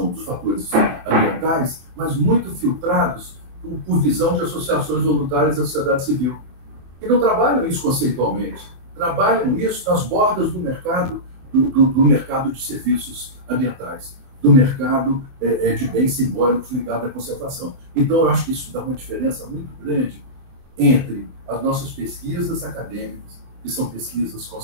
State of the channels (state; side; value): late; left; 24 ms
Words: dos fatores ambientais, mas muito filtrados por visão de associações voluntárias da sociedade civil. E não trabalham isso conceitualmente. Trabalham isso nas bordas do mercado, do mercado de serviços ambientais, do mercado de bens simbólicos ligado à conservação. Então, eu acho que isso dá uma diferença muito grande entre as nossas pesquisas acadêmicas, que são pesquisas